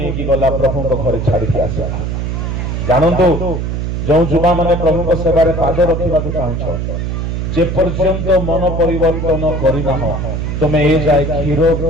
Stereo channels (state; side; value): noise; right; hum, 2 dB below the sound